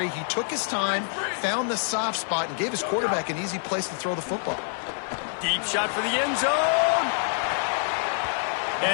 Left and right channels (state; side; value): silent; right; digital silence